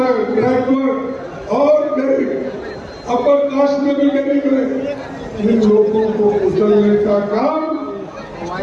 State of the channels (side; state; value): both; identical; correlation 1.00